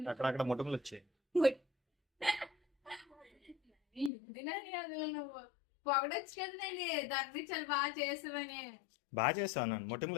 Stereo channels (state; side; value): drops out; right; at 4.1 s